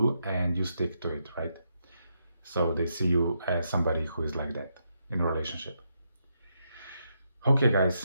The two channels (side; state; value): both; inverted; correlation -0.81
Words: and you stick to it, right? So they see you as somebody who is like that in a relationship. Okay,